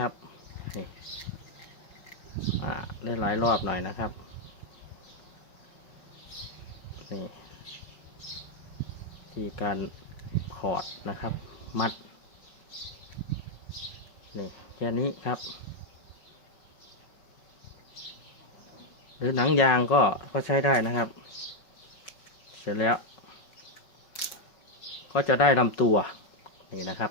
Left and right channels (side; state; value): right; late; 5.4 ms